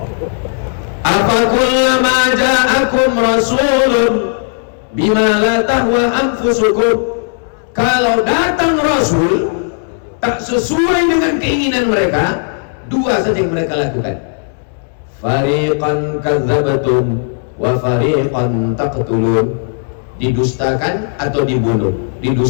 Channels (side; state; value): right; silent; digital silence